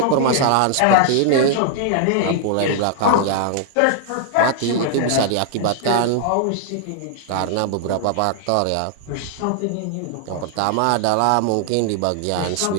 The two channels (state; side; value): different; both; correlation 0.00